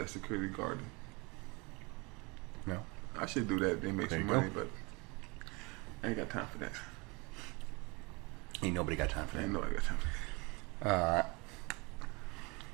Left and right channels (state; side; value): quieter; left; 27.5 dB